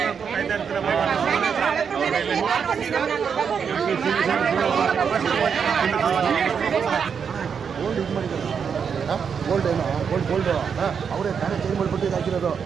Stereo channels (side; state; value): left; quieter; 6.7 dB